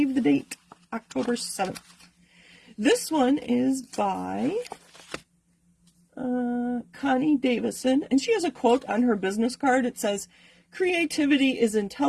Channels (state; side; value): identical; both; correlation 1.00